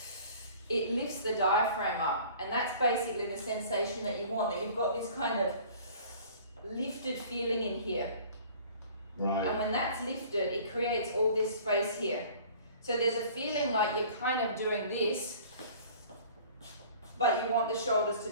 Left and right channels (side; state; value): both; inverted; correlation -0.48